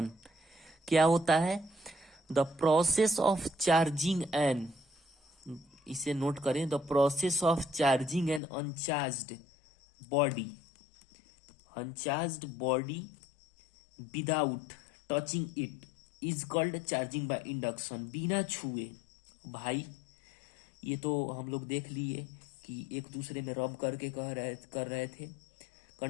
क्या होता है, the process of charging an, इसे नोट करें, the process of charging an uncharged body without touching it is called charging by induction. बिना छुए, भाई ये तो हम लोग देख लिए कि एक दूसरे में रब करके कर रहे थे,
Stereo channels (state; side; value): drops out; right; at 8.4 s